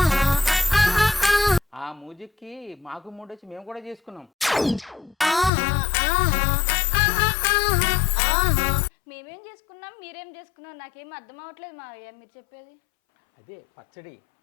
ఆ మ్యూజిక్కి మాకు మూడు వచ్చి మేము కూడా చేసుకున్నాం. మేమేం చేసుకున్నాం, మీరేం చేసుకున్నాం, నాకేం అర్థం అవ్వట్లేదు మావయ్య మీరు చెప్పేది. అదే పచ్చడి.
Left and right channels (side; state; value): right; drops out; at 5.5 s